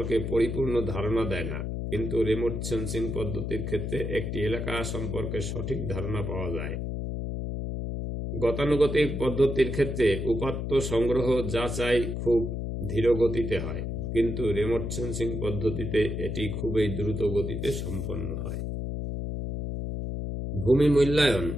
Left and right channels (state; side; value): noise; left; hum, 3 dB below the sound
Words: পরিপূর্ণ ধারণা দেয় না, কিন্তু রিমোট সেন্সিং পদ্ধতির ক্ষেত্রে একটি এলাকা সম্পর্কে সঠিক ধারণা পাওয়া যায়। গতানুগতিক পদ্ধতির ক্ষেত্রে উপাত্ত সংগ্রহ যাচাই খুব ধীর গতিতে হয়, কিন্তু রিমোট সেন্সিং পদ্ধতিতে এটি খুবই দ্রুত গতিতে সম্পন্ন হয়। ভূমি মূল্যায়ন